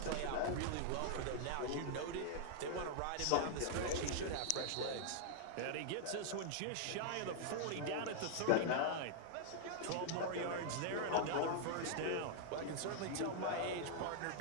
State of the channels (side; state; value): both; different; correlation -0.01